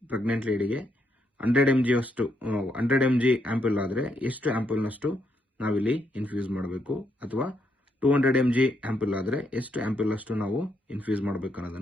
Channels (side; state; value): both; normal; correlation 0.77